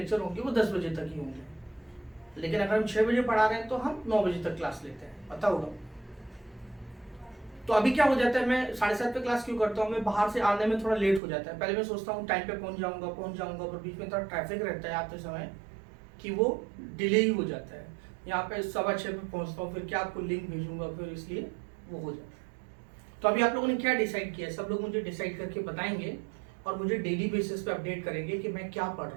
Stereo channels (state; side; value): drops out; left; at 11.2 s